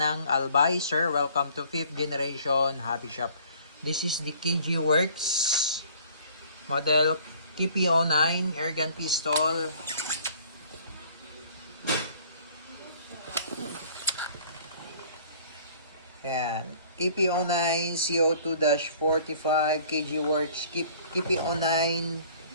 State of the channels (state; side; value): inverted; both; correlation -0.53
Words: Albay. Sir, welcome to 5th generation Hobby Shop. This is the KG Works model KP09 airgun pistol. Ayan. KP09 CO2-45 KG Works KP09